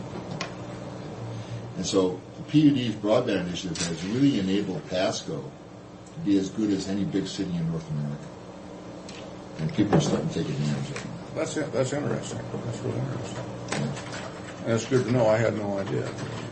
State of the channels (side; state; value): both; identical; correlation 1.00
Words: And so the PUD's broadband initiative has really enabled Pasco to be as good as any big city in North America. And people are starting to take advantage of it. That's interesting. That's really interesting. Yeah. That's good to know. I had no idea.